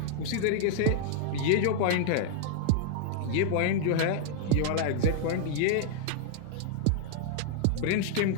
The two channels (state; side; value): different; both; correlation -0.01